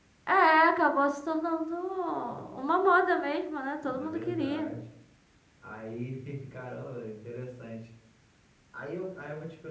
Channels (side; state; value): both; identical; correlation 1.00